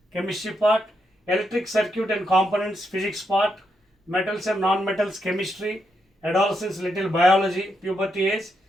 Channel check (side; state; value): both; normal; correlation 0.81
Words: chemistry part, electric circuit and components physics part, metals and non metals chemistry, adolescence little biology puberty age